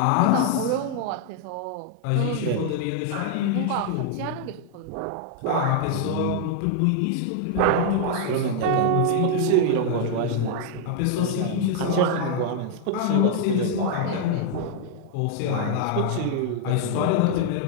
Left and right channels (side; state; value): both; different; correlation 0.00